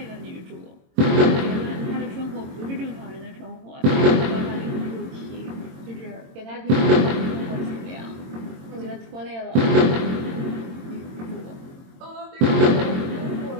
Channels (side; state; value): left; late; 22 ms